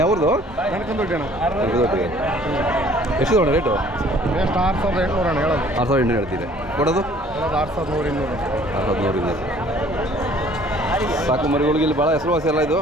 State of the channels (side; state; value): both; normal; correlation 0.55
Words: ಯಾವ್ದು ಎಷ್ಟು ತಗೊಂಡ ರೇಟು? ಎಷ್ಟು 6800 ಅಣ್ಣ ಹೇಳೋದು. 6800 ಹೇಳ್ತೀರಿ, ಕೊಡೋದು 6100. 6200. ಸಾಕು ಮರಿಗಳಿಗೆ ಇಲ್ಲಿ ಭಾಳ ಹೆಸರುವಾಸಿ ಎಲ್ಲ ಇದು